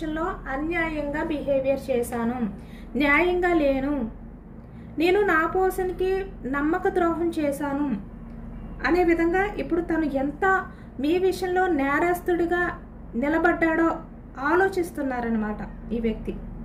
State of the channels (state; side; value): identical; both; correlation 1.00